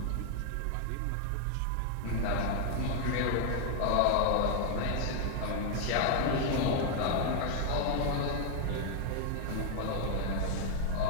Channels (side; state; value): both; different; correlation 0.00